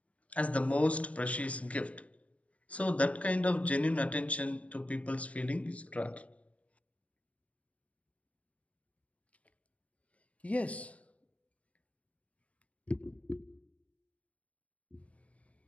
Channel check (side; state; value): right; late; 0.066 ms